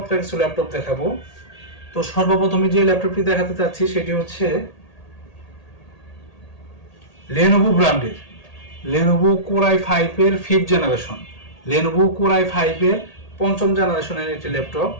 কিছু ল্যাপটপ দেখাবো। তো সর্বপ্রথমে যে ল্যাপটপটি দেখাতে চাচ্ছি সেটি হচ্ছে লেনোভো ব্র্যান্ডের লেনোভো কোর i5 এর 5th generation, Lenovo core i5 এর 5ম জেনারেশনের একটি ল্যাপটপ।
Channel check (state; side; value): late; right; 1.8 ms